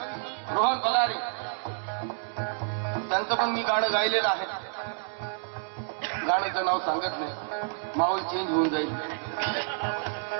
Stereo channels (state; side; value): silent; left; digital silence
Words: रोहन बलारे त्यांचं पण मी गाणं गायलेलं आहे. गाण्याचं नाव सांगत नाही, माहोल चेंज होऊन जाईल.